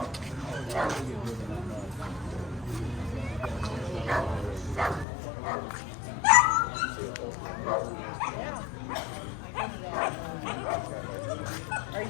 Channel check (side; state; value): right; drops out; at 5.1 s